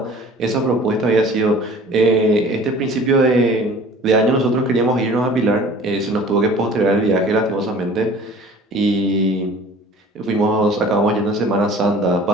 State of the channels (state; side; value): normal; both; correlation 0.46